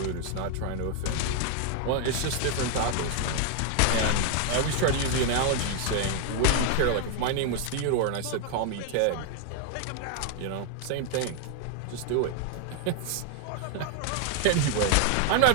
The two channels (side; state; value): both; different; correlation 0.01